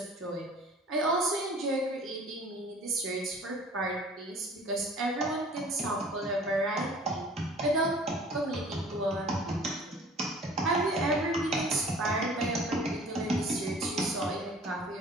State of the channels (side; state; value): both; normal; correlation 0.48